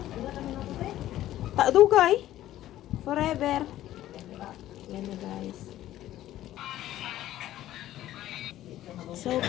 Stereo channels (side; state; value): right; quieter; 13.7 dB